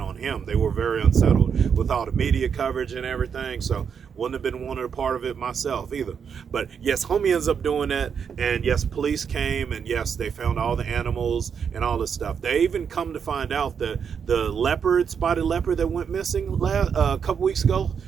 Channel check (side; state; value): left; quieter; 6.9 dB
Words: him. They were very unsettled with all the media coverage and everything. So wouldn't have been wanted a part of it myself either. But yes, homie ends up doing that. And yes, police came, and yes, they found all the animals and all this stuff. They even come to find out that the spotted leopard that went missing a couple weeks ago,